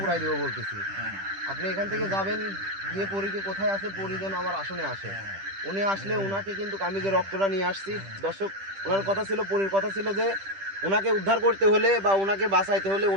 দেবো বলতেছি। আপনি এখান থেকে যাবেন, গিয়ে পরীকে কোথায় আছে, পরী যেন আমার আসনে আসে। উনি আসলে ওনাকে কিন্তু আমি যে রক্তটা নিয়ে আসছি, দর্শক ওনার কথা ছিল, পরীর কথা ছিল যে ওনাকে উদ্ধার করতে হলে বা ওনাকে বাঁচাইতে হলে,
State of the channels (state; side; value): late; left; 10 ms